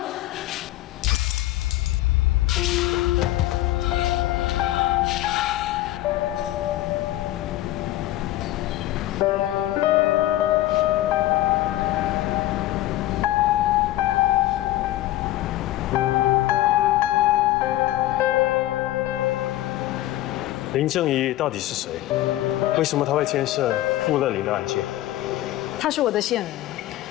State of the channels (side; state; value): right; quieter; 15.4 dB